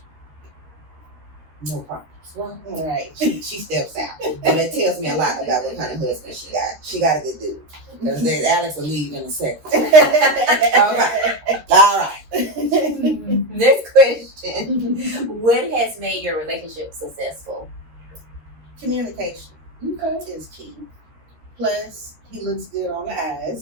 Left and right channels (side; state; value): left; late; 12 ms